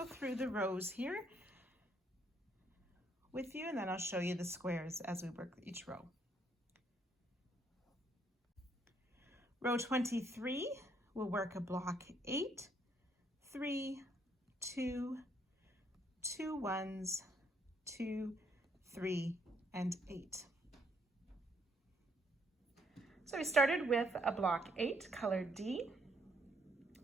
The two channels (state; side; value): normal; both; correlation 0.70